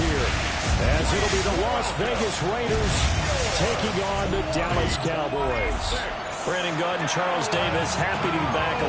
here, as it'll be the Las Vegas Raiders taking on the Dallas Cowboys. Brandon Gaud and Charles Davis, happy to be back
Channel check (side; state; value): both; identical; correlation 1.00